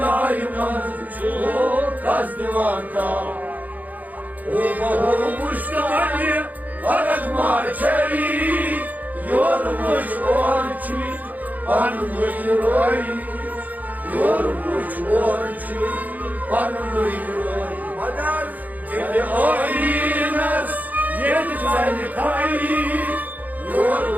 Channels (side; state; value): left; late; 0.080 ms